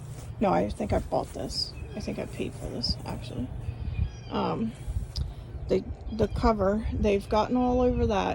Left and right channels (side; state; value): both; identical; correlation 1.00